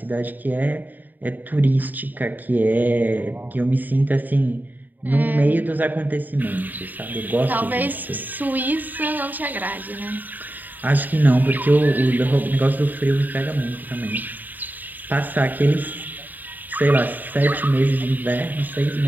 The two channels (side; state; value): left; late; 0.087 ms